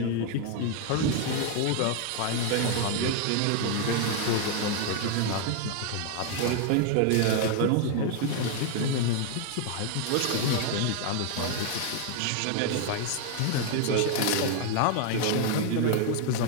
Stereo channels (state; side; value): different; both; correlation 0.00